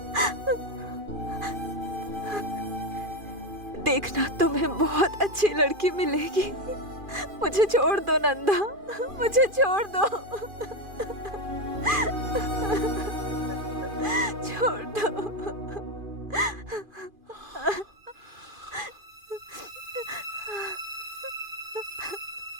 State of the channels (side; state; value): left; late; 2.4 ms